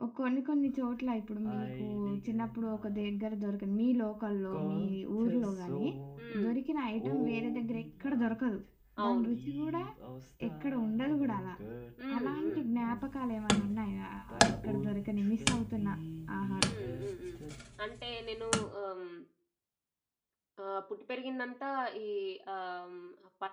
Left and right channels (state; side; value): identical; both; correlation 1.00